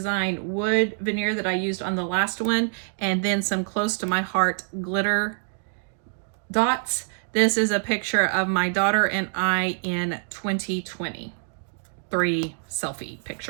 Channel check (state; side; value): silent; left; 55 dB below the other